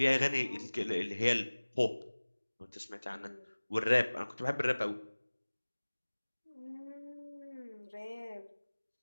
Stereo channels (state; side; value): inverted; both; correlation -1.00